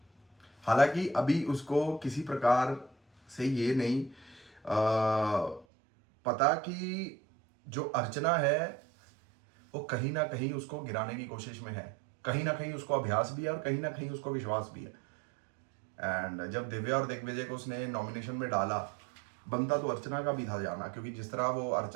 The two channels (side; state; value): left; drops out; at 5.7 s